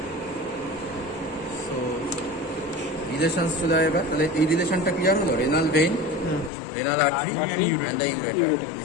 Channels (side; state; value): right; drops out; at 6.5 s